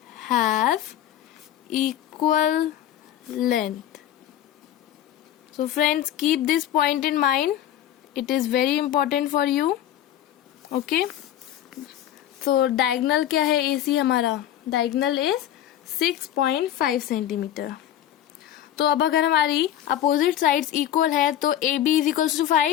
have equal length. So friends, keep this point in mind. It is very important for you. Okay. So diagonal क्या है AC हमारा? Diagonal is 6.5 centimetre. तो अब अगर हमारी opposite sides equal है तो A B is equals to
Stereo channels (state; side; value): quieter; right; 11.5 dB